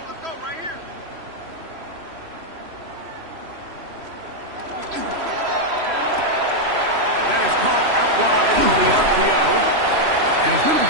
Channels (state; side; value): late; left; 3.0 ms